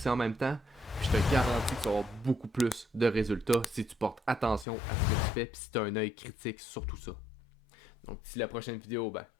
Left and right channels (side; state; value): right; drops out; at 4.7 s